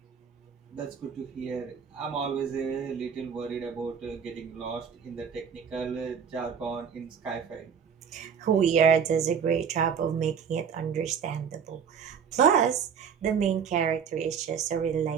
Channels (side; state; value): left; quieter; 7.0 dB